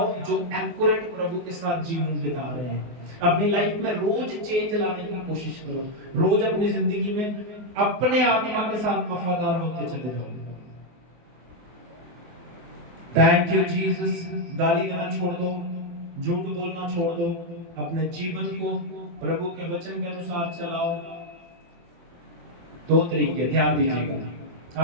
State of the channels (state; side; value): late; left; 24 ms